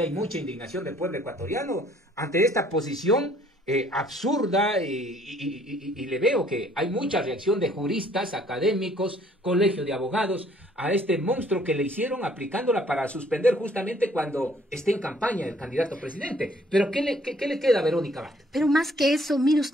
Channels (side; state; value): both; normal; correlation 0.61